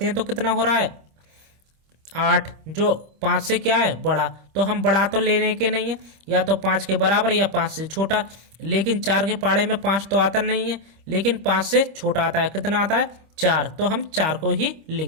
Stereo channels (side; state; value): left; late; 25 ms